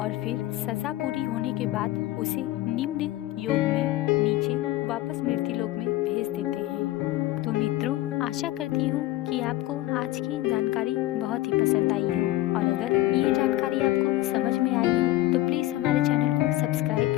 और फिर सजा पूरी होने के बाद उसे निम्न योग में नीचे वापस मृत्यु लोक में भेज देते हैं। तो मित्रों, आशा करती हूँ कि आपको आज की जानकारी बहुत ही पसंद आई हो और अगर ये जानकारी आपको समझ में आई हो तो प्लीज़ हमारे चैनल को सब्सक्राइब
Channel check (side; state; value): right; quieter; 16.4 dB